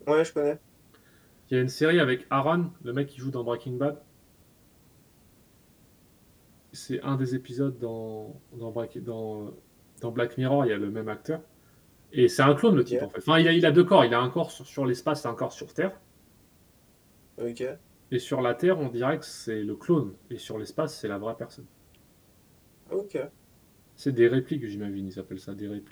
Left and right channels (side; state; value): both; identical; correlation 1.00